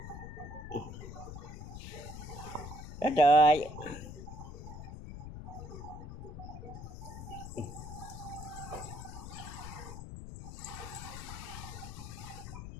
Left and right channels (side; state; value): left; noise; rumble, 9 dB below the sound